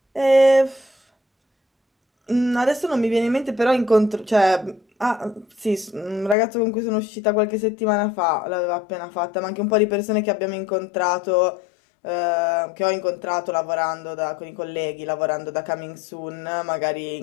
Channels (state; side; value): drops out; right; at 6.4 s